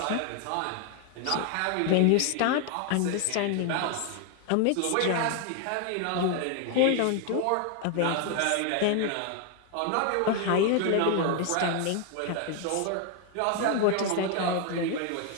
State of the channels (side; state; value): both; different; correlation 0.01